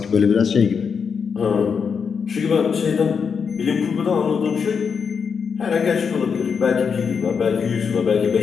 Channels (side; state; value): right; quieter; 6.2 dB